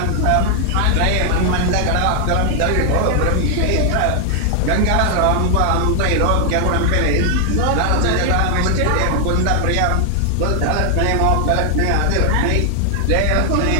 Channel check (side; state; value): both; different; correlation 0.00